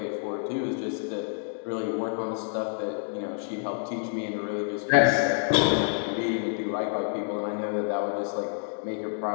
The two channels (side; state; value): right; silent; 59 dB below the other